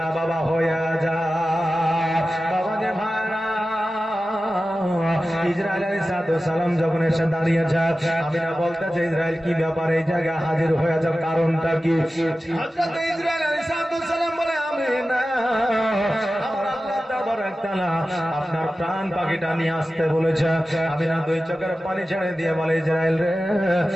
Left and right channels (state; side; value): normal; both; correlation 0.94